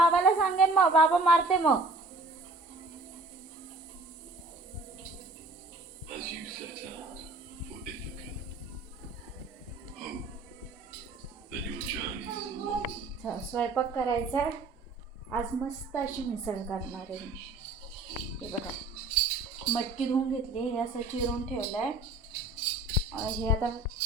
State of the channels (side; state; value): left; quieter; 3.1 dB